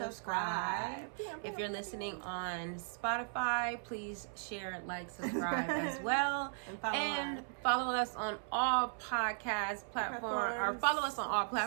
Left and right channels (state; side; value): silent; left; 53 dB below the other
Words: If you're listening on Spotify, please share, like, subscribe as well. And follow us on all podcast platforms, or follow us on all